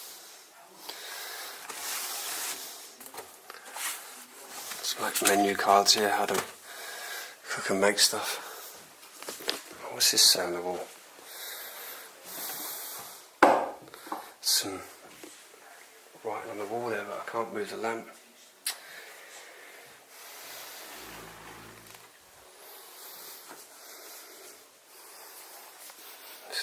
Like menu cards here, how to cook and make stuff. What's this say on the wall? Some writing on the wall there, but I can't move the lamp.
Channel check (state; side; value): identical; both; correlation 1.00